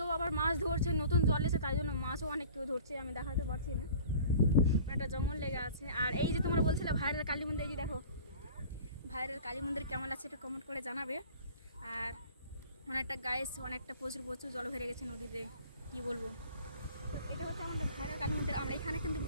আবার মাছ ধরছে, নতুন জল এসে, তাই জন্য মাছও অনেক কেউ ধরছে। আমি দেখাতে পারছি না, একটা জঙ্গল লেগে আছে। আর এই যে তোমরা বলছিলে ভাইরাল কালী মন্দির, এই যে দেখো ভাইরাল কালী মন্দির কেমন আছে একটু কমেন্ট করে জানাবে। আর অনেকটা অনেকটা প্রচুর প্রচুর জল ভরে গেছে নদীতে, কি বলবো। তো এটা হচ্ছে আমাদের ভাইরাল কালী মন্দির। আমরা এখানে কিন্তু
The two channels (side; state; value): both; inverted; correlation -0.45